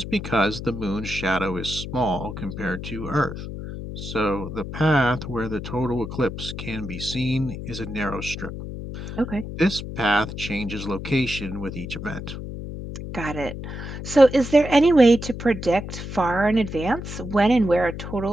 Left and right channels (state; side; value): noise; left; hum, 8 dB below the sound